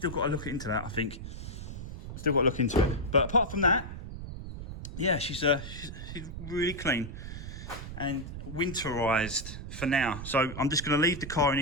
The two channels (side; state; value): right; noise; rumble, 9 dB below the sound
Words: got to look into that, I think. Still got to look into it. But apart from that, yeah, she's really clean and winterized for now. So I'm just going to leave the car in